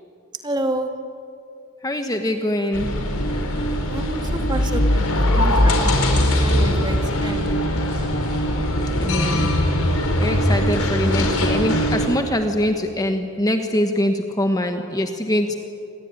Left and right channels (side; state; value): both; normal; correlation 0.65